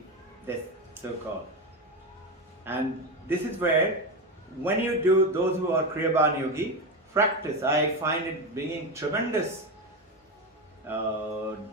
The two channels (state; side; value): normal; both; correlation 0.16